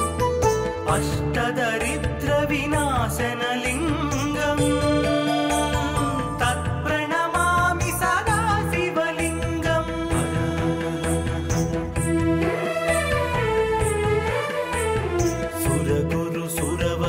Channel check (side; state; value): both; identical; correlation 1.00